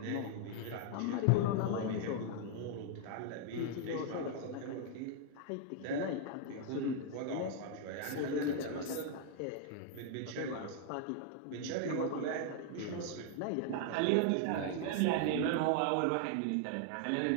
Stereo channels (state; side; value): different; both; correlation 0.00